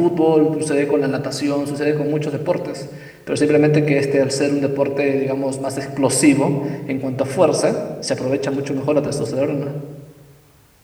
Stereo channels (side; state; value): both; identical; correlation 1.00